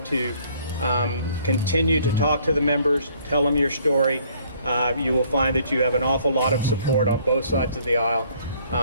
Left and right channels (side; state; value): both; inverted; correlation -0.61